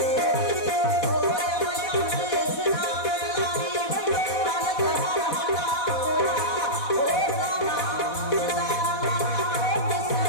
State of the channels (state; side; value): late; right; 4.1 ms